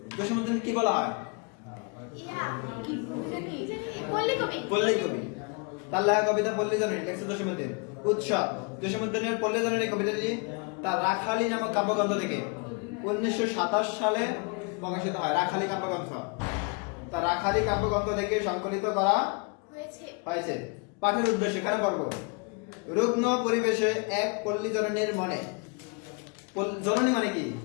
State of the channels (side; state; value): right; quieter; 32.9 dB